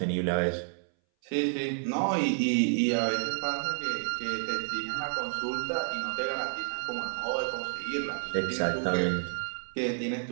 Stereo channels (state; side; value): silent; left; 58 dB below the other